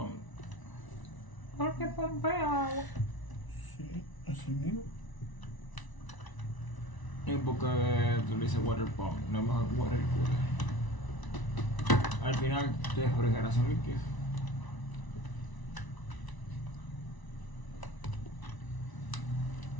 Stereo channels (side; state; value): right; late; 1.0 ms